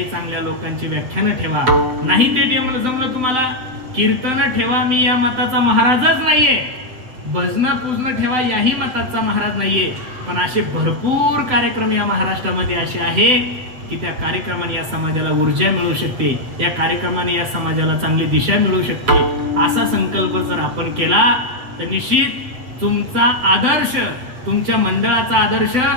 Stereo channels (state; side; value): late; left; 7.8 ms